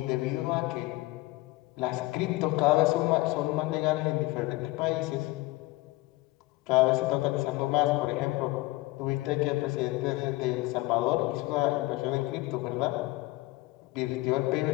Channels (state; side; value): quieter; right; 20.7 dB